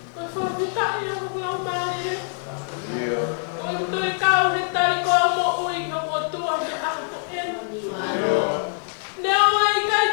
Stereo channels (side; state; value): right; silent; digital silence